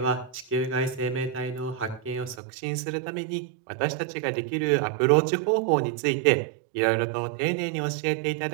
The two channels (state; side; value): drops out; left; at 2.4 s